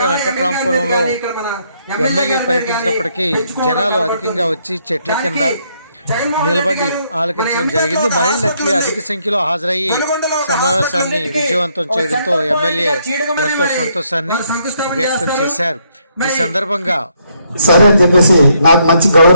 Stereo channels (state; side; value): inverted; both; correlation -0.72